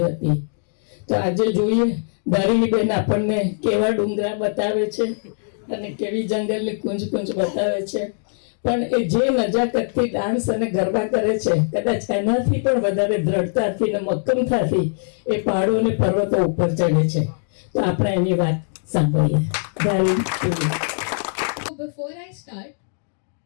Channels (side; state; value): right; silent; digital silence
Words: હતી. તો આજે જોઈએ ધારીણીબેન આપણને કેવા ડુંગરા બતાવે છે અને કેવી જંગલની કુંજ કુંજ બતાવે છે. પણ એ જે નજાકતથી ડાન્સ અને ગરબા કરે છે, કદાચ એનાથી પણ વધારે દ્રઢતાથી અને મક્કમતાથી એ પહાડો અને પર્વતો ઉપર ચડે છે. તો આપણે એની વાત સાંભળીએ. બિફોર આઈ સ્ટાર્ટ,